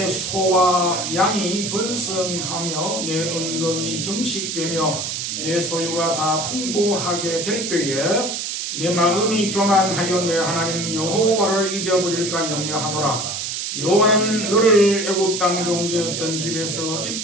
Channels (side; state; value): right; noise; hiss, 3 dB below the sound